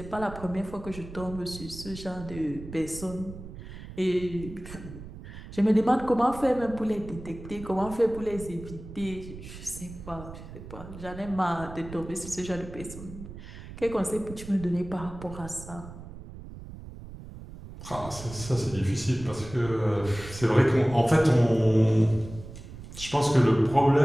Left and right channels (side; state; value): right; noise; rumble, 13 dB below the sound